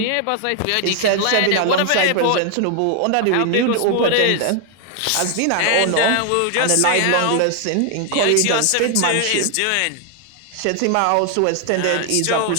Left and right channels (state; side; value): different; both; correlation 0.00